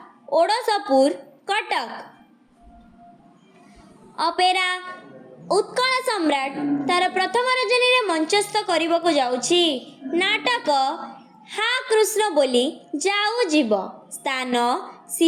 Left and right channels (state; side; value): identical; both; correlation 1.00